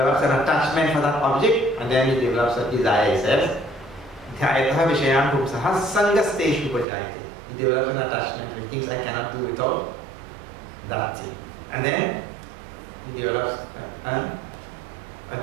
an attachment for that object, and then he develops a desire. He says, Dhyayataha Vishayan Pumsaha Sangasteshu Pajayate. He develops an attachment, and he thinks I cannot do without that thing. And then he develops a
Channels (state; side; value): drops out; left; at 6.9 s